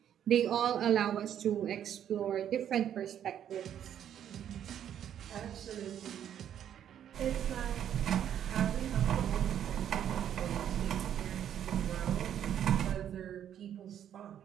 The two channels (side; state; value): left; quieter; 9.9 dB